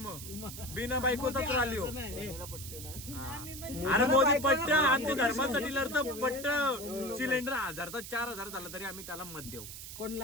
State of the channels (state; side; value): noise; right; hiss, 11 dB below the sound